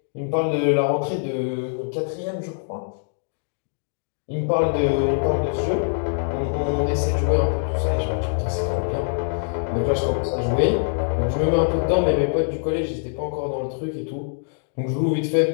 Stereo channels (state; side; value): silent; right; digital silence